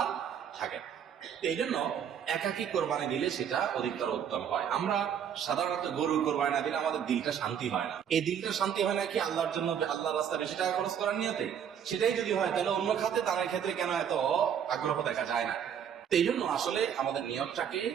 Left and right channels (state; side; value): quieter; left; 8.5 dB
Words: থাকে না। এই জন্য একাকি কোরবানি দিলে সেটা অধিকতর উত্তম হয়। আমরা সাধারণত গরু কোরবানি না দিলে আমাদের দিলটা শান্তি হয় না। এই দিলটা শান্তি হয় না কি আল্লাহর জন্য, আল্লাহর রাস্তায় বেশি টাকা খরচ করার নিয়তে? সেটাই যদি হয় তাহলে অন্য খাতে দানের ক্ষেত্রে কেন এত আগ্রহ দেখা যায় না? এই জন্য আসলে আমাদের নিয়তটাকে